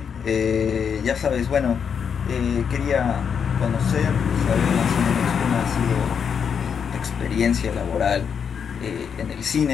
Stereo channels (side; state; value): right; quieter; 7.0 dB